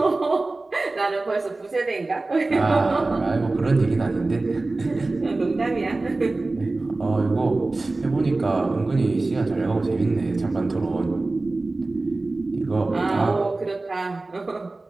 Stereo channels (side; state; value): left; quieter; 3.2 dB